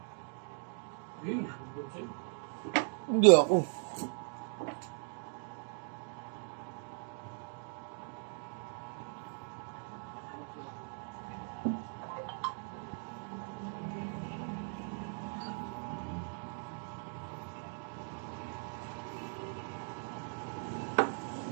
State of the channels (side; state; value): left; silent; 52 dB below the other